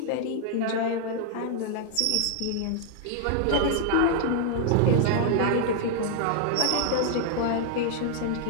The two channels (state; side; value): different; both; correlation 0.00